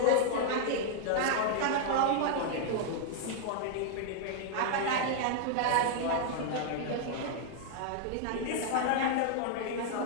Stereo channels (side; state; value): both; different; correlation 0.00